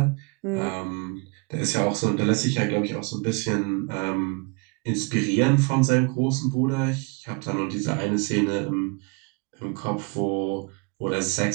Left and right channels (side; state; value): left; quieter; 32.4 dB